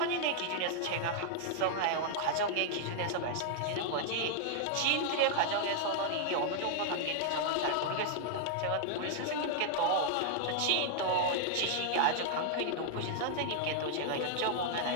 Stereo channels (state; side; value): different; both; correlation 0.00